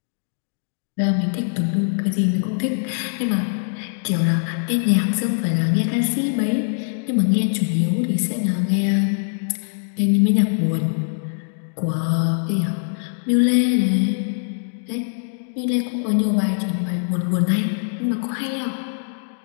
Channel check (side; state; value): right; silent; digital silence